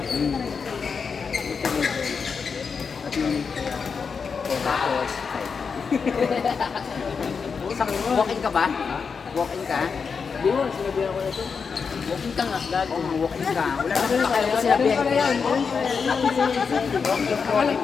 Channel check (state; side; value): quieter; right; 5.6 dB